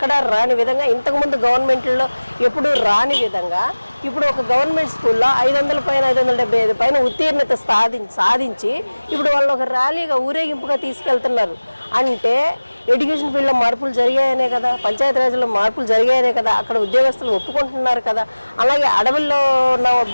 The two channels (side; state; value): both; inverted; correlation -1.00